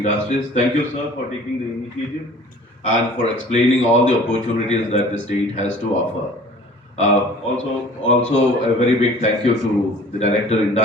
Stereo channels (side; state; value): both; normal; correlation 0.48